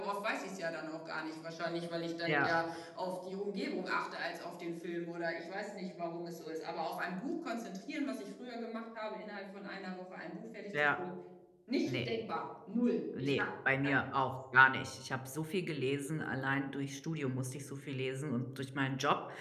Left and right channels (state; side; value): identical; both; correlation 1.00